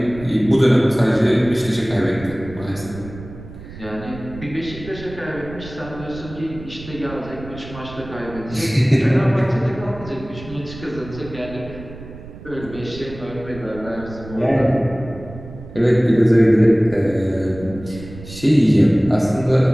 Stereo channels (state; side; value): noise; right; rumble, 15 dB below the sound